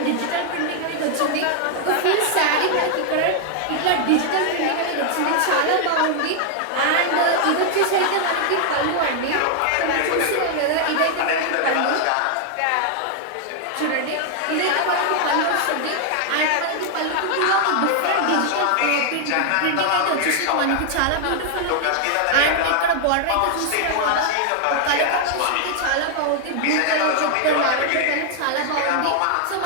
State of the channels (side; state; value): both; different; correlation 0.00